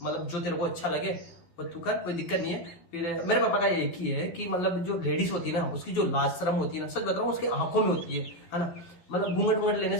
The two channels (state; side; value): late; right; 12 ms